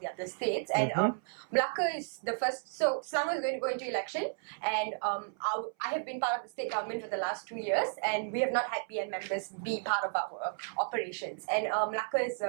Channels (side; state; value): left; silent; 56 dB below the other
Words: other states. And Melaka is the first. So Selangor is going to go into election, and I have been part of the state government for the last 2 years, and we have not had BN members be part of our operations. And Melaka is